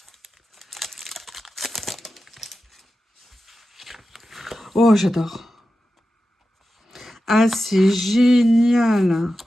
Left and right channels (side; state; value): both; normal; correlation 0.92